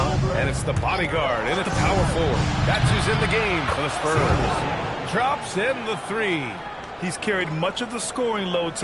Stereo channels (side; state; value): both; identical; correlation 1.00